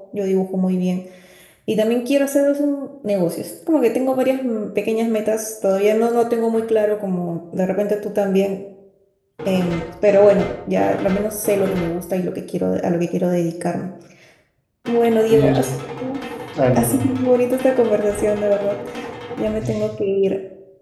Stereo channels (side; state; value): both; identical; correlation 1.00